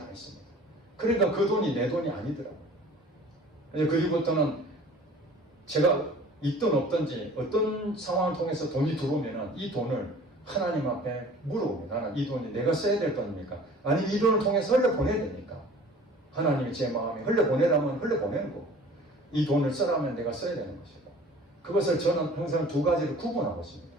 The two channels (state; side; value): normal; both; correlation 0.47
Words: 했습니다. 그러니까 그 돈이 내 돈이 아니더라고요. 그리고부터는 제가 있든 없든지 어떤 상황을 통해서 돈이 들어오면은 이 돈을 하나님 앞에 물어봅니다. 나는 이 돈이 내가 써야 될 돈입니까? 아니면 이 돈을 통해서 흘려보내야 됩니까? 하나님이 제 마음에 흘려보내라면 흘려보내는 거. 이 돈을 쓰라면 내가 써야 되는 것이고, 그것을 저는 항상 두 가지로 구분하고 있습니다.